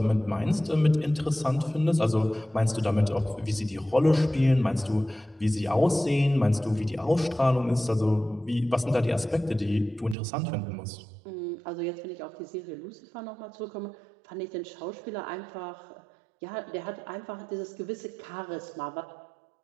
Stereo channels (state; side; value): drops out; left; at 10.2 s